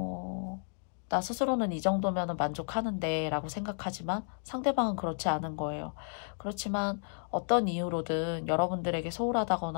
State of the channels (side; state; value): right; silent; digital silence